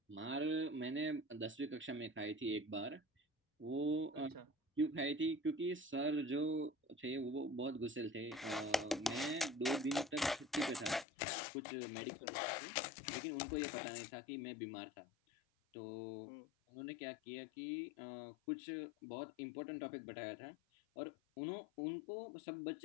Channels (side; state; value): right; drops out; at 11.1 s